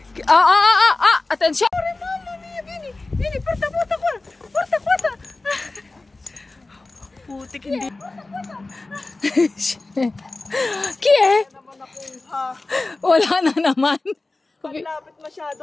Attenzione. Mamma mia, vieni, vieni, porta qua. Porta. Putik, hindi. Chi è? Wala na naman. Paglapit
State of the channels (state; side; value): quieter; right; 3.2 dB